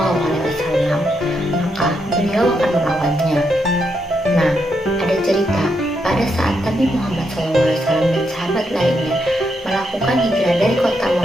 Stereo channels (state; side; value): normal; both; correlation 0.80